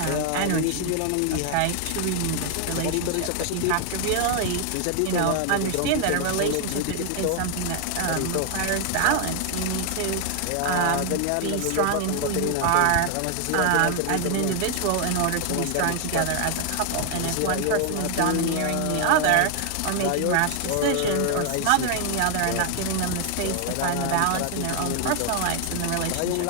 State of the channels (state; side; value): different; both; correlation 0.00